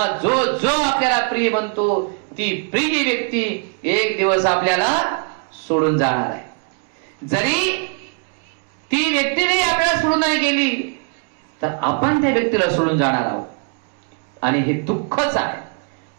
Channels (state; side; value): quieter; left; 38.7 dB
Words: जो जो आपल्याला प्रिय म्हणतो ती प्रिय व्यक्ती एक दिवस आपल्याला सोडून जाणार आहे. जरी ती व्यक्ती जरी आपल्याला सोडून नाही गेली तर आपण त्या व्यक्तीला सोडून जाणार आहोत. आणि हे दुःखच आहे.